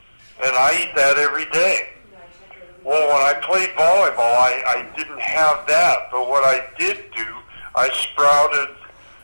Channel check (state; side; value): inverted; both; correlation -1.00